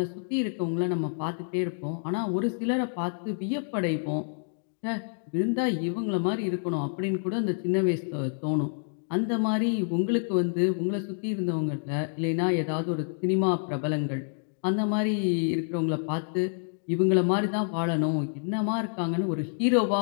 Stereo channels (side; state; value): right; silent; digital silence